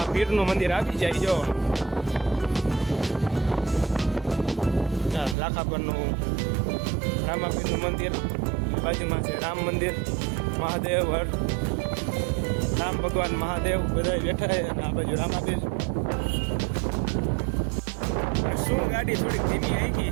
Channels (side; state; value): left; drops out; at 5.4 s